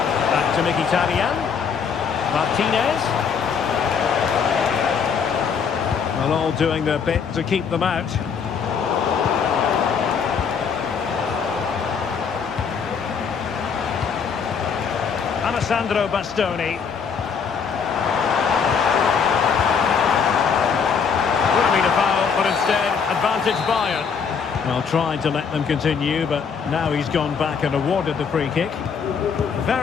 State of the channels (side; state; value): right; quieter; 6.4 dB